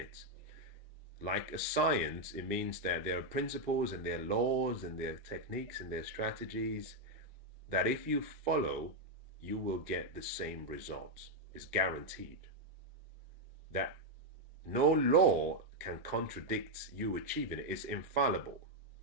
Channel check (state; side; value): normal; both; correlation 0.01